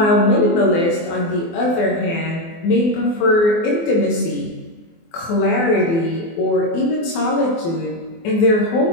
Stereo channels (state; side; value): late; right; 24 ms